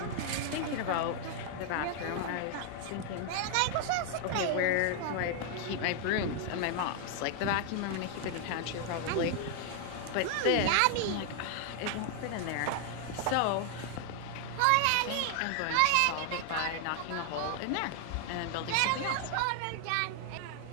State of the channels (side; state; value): both; different; correlation 0.00